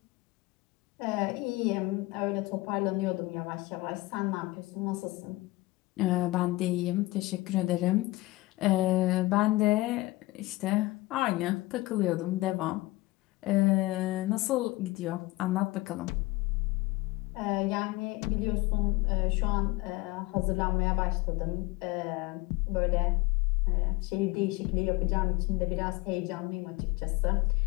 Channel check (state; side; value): quieter; right; 20.5 dB